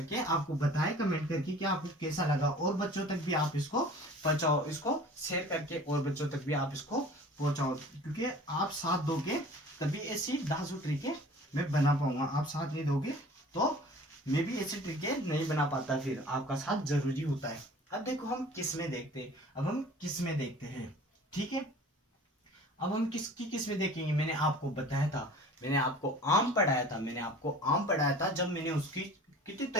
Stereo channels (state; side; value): normal; both; correlation 0.45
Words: आपको बताएं कमेंट करके कि आपको कैसा लगा, और बच्चों तक भी आप इसको पहुंचाओ, इसको शेयर करके और बच्चों तक भी आप इसको पहुंचाओ, क्योंकि आप साथ दोगे तभी ऐसी 10 ट्रिकें मैं बना पाऊंगा। आप साथ नहीं दोगे तो मैं भी ऐसी ट्रिकें नहीं बना पाता, फिर आपका साथ जरूरी होता है। अब देखो हम किस्में देखते हैं, अब हम किस्में देखते हैं। ठीक है, अब हम किसकी किस्में देखेंगे। मैंने आपको बताया था, मैंने आपको आम पढ़ाया था, मैंने आपको आम पढ़ाया था जब मैंने उसकी कितने